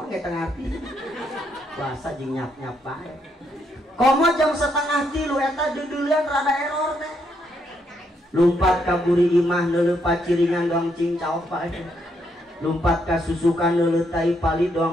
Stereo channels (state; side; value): normal; both; correlation 0.76